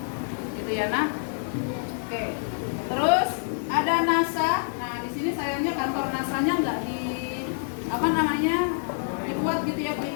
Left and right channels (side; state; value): right; silent; 58 dB below the other